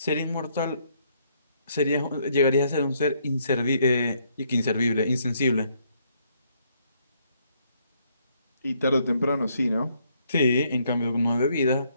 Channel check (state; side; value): inverted; both; correlation -0.71